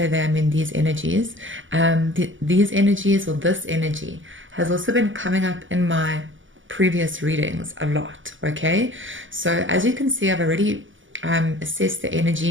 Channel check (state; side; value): late; left; 0.56 ms